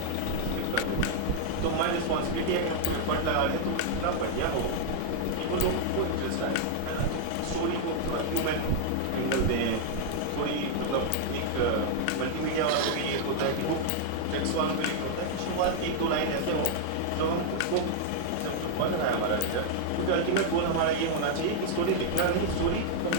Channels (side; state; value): both; different; correlation 0.00